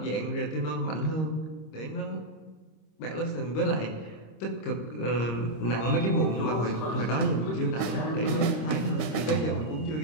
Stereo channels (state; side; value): late; right; 26 ms